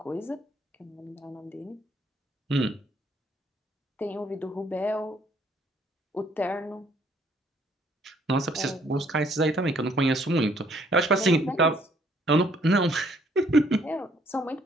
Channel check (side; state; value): both; normal; correlation 0.65